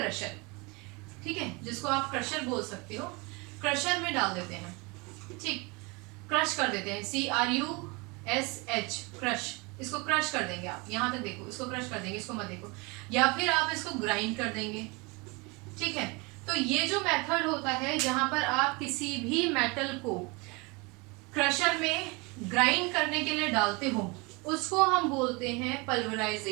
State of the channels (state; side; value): quieter; left; 27.7 dB